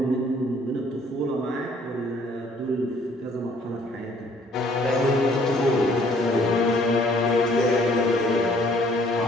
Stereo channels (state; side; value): normal; both; correlation 0.60